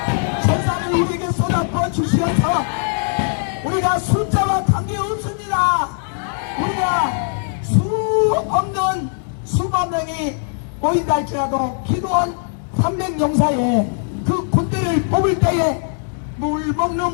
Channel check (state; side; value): silent; right; 63 dB below the other